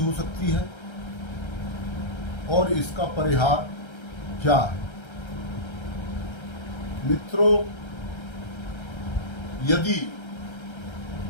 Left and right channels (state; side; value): late; right; 1.3 ms